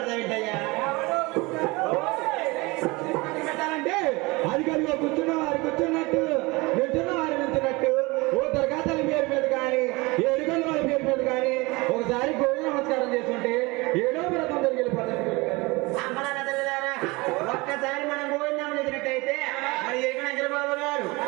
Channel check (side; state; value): left; quieter; 24.2 dB